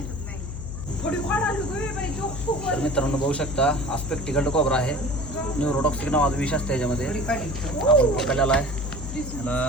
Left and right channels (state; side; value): noise; left; hum, 7 dB below the sound